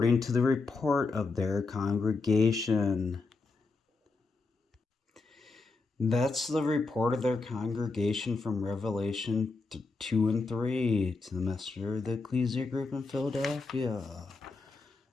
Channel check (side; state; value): right; quieter; 3.9 dB